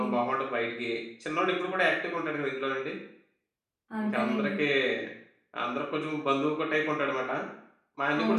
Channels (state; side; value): identical; both; correlation 1.00